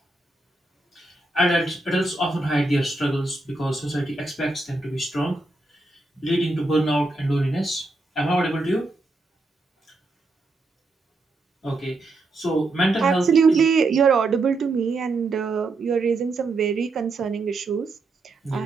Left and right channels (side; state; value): left; quieter; 3.1 dB